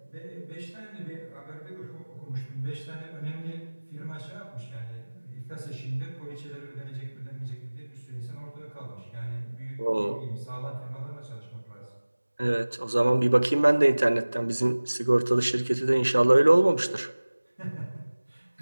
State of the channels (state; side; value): inverted; both; correlation -1.00